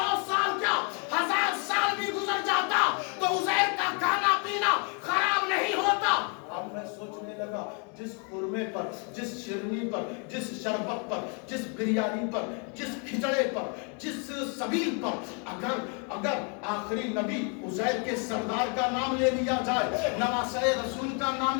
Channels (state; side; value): quieter; right; 37.5 dB